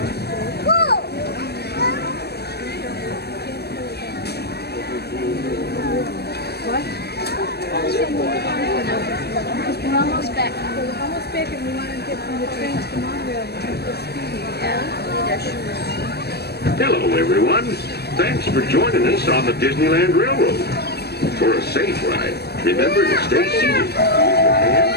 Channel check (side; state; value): right; late; 0.47 ms